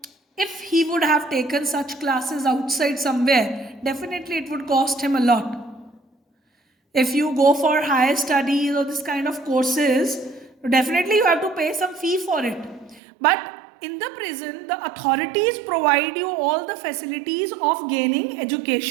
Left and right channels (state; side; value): drops out; left; at 13.0 s